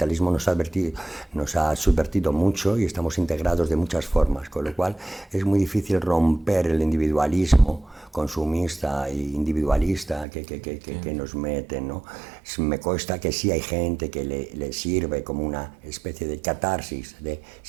nos ha subvertido mucho y estamos integrados de muchas formas, con lo cual es muy difícil romper el individualismo consumista e individualista que nos meten, ¿no? Me consta que sí hay gente que le sirve como una especie de catarsis, de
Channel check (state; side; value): drops out; left; at 10.2 s